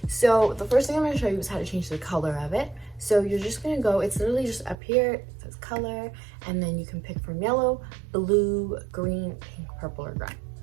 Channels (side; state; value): left; drops out; at 4.8 s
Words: So the first thing I'm going to show you is how to change the color of it. So you're just going to go, it's literally just up here, it says color, and then you can pick from yellow, blue, green, pink, purple, or gray.